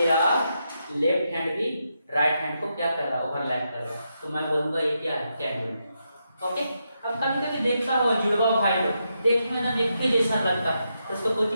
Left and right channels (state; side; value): inverted; both; correlation -0.83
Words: लेफ्ट हैंड भी राइट हैंड को क्या कर रहा है, ओवरलैप कर रहा है। तो मैं बोलूंगा ये क्या है, कैंग्रुएंट। ओके, अब कभी कभी देखता हो जुड़वा भाई लोग, देखने में एक ही जैसा लगता है, तो उसको